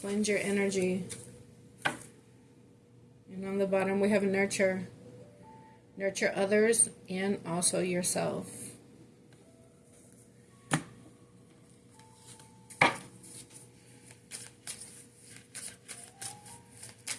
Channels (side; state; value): both; identical; correlation 1.00